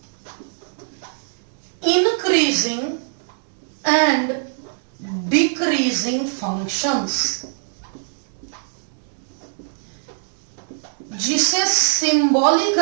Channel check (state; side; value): silent; left; digital silence